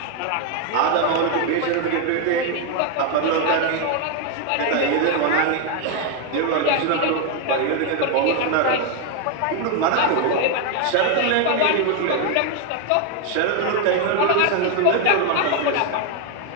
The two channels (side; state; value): both; different; correlation 0.01